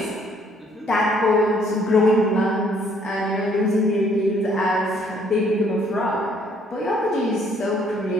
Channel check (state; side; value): normal; both; correlation 0.64